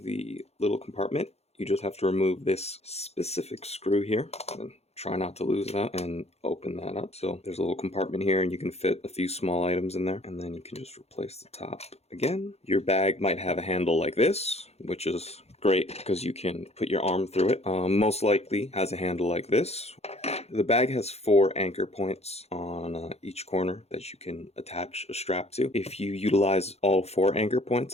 little compartment. You just have to remove this specific screw here, and try not to lose that, and open that up. So there's a little compartment here and you can fit a few small items in there, and then you can just replace the top again. Your bag might have a handle like this, which is great because you can put your arm through it. Most likely has a handle like this. The bag has 4 anchor points on each corner that you can attach a strap to. If you utilize all 4 anchor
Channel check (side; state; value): right; late; 0.31 ms